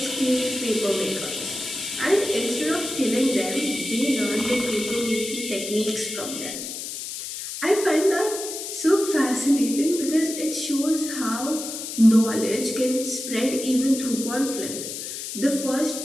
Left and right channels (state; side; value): noise; left; hiss, 7 dB below the sound